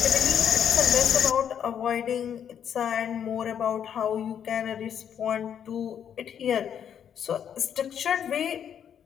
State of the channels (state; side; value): quieter; right; 8.7 dB